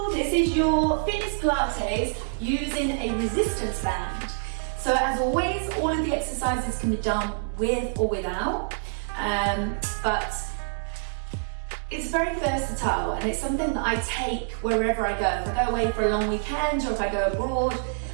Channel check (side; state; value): left; silent; 61 dB below the other